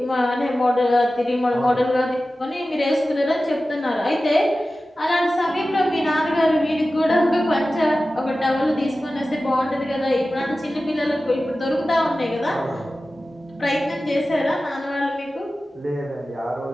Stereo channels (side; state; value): both; normal; correlation 0.95